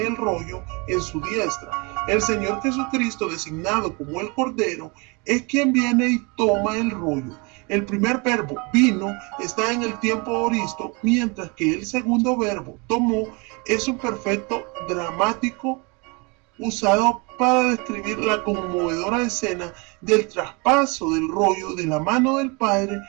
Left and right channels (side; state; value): left; quieter; 29.6 dB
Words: el rollo en su diestra. El Señor Jesucristo, designado como el Cordero, es quien viene y toma el rollo. El primer verbo, vino, está en el tiempo aoristo, mientras que el segundo verbo, tomó, es un perfecto dramático usado para describir la conmovedora escena del traspaso del rollo de la mano del Padre